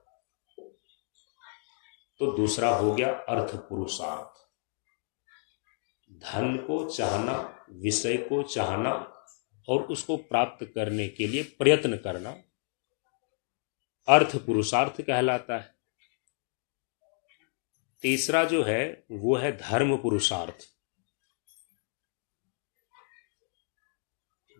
तो दूसरा हो गया अर्थ पुरुषार्थ। धन को चाहना, विषय को चाहना और उसको प्राप्त करने के लिए प्रयत्न करना अर्थ पुरुषार्थ कहलाता है। तीसरा जो है वो है धर्म पुरुषार्थ।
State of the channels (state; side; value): silent; right; 57 dB below the other